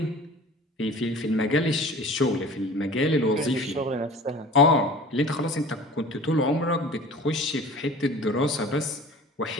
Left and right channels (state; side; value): normal; both; correlation 0.42